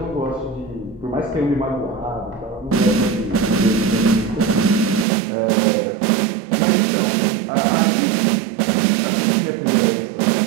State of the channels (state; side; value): drops out; left; at 5.1 s